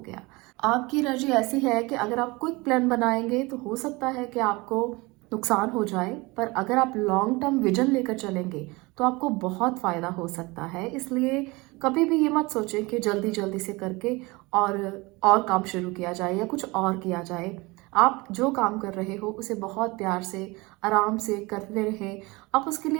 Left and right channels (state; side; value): quieter; left; 24.1 dB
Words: आपकी एनर्जी ऐसी है कि अगर आप क्विक प्लान बनाएंगे तो हो सकता है कि आपको नुकसान हो जाए, पर अगर आप लॉन्ग टर्म विजन लेकर चलेंगे तो आपको बहुत फ़ायदा हो सकता है। इसलिए कभी भी ये मत सोचें कि जल्दी जल्दी से करके और काम शुरू किया जाए या कुछ और किया जाए। आप जो काम कर रहे हो उसे बहुत प्यार से, आराम से करते रहें। आप उसके